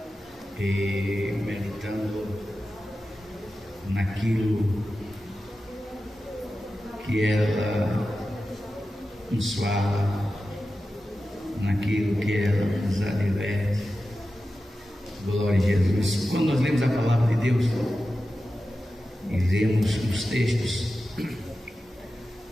e meditando naquilo que ela nos fala, naquilo que ela nos adverte. Glória a Jesus. Quando nós lemos a palavra de Deus e lemos os textos,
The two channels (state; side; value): normal; both; correlation 0.93